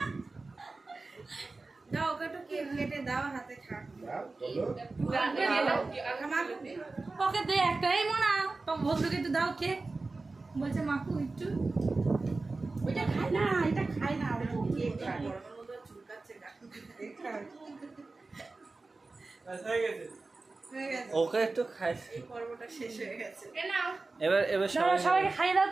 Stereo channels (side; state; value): left; quieter; 3.6 dB